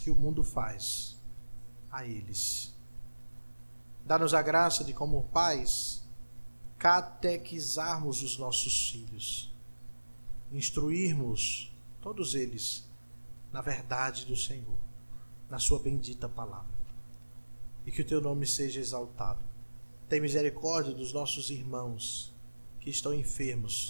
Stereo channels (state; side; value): inverted; both; correlation -1.00